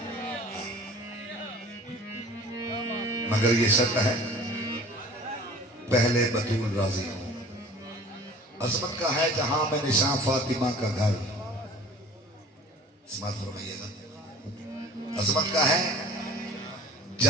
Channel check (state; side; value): normal; both; correlation 0.45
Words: मगर ये शर्त है पहले बतूल राजी हो। अजमत का है जहां में निशान फातिमा का घर, फरमाइएगा। अजमत का है